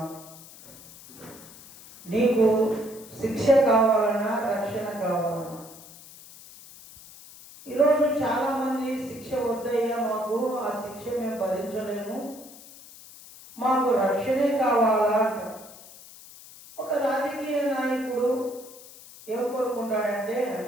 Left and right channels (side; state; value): left; noise; hiss, 19 dB below the sound